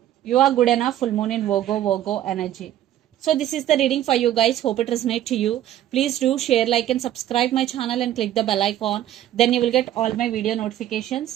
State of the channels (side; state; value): left; quieter; 12.3 dB